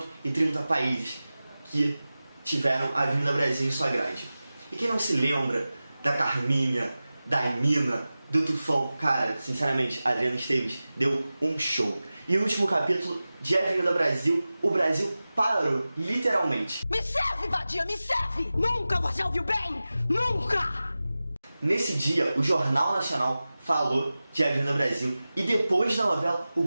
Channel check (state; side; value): inverted; both; correlation -0.96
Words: países que tiveram a Avenida Brasil em sua grade. E quem não se lembra da Carminha, da Emina, do Tufão? Cara, sinceramente, a Adriana Esteves deu um show. E o último capítulo de Avenida Brasil, o Brasil parou, literalmente. Me serve, vadia, me serve! Nunca você ouviu bem! Nunca! Nesse dia, o Jornal Nacional falou de Avenida Brasil. E depois da novela, o